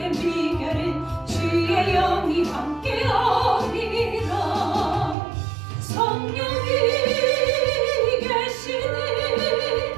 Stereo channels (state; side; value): drops out; left; at 5.2 s